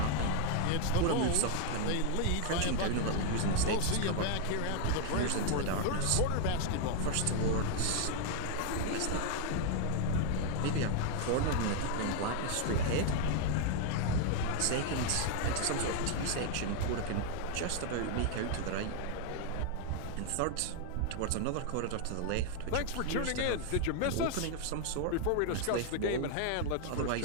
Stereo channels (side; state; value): both; different; correlation 0.00